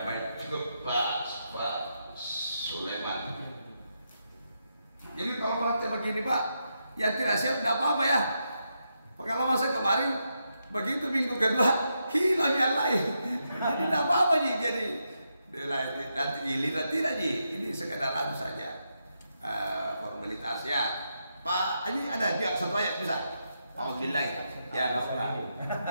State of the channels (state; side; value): inverted; both; correlation -0.83